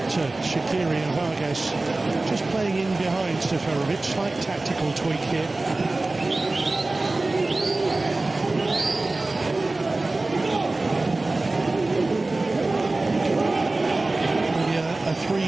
Shaqiri and Vargas just playing in behind Seferovic. Slight tactical tweak here. A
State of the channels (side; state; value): left; quieter; 3.1 dB